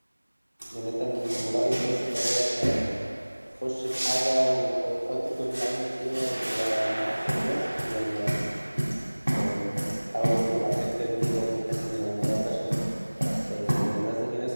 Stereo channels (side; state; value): both; inverted; correlation -1.00